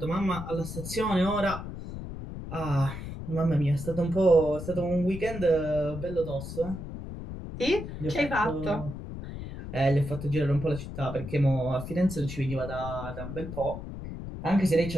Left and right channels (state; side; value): noise; left; rumble, 9 dB below the sound